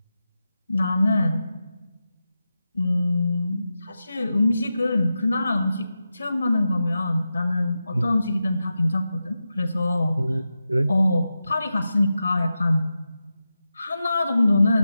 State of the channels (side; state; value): both; inverted; correlation -0.91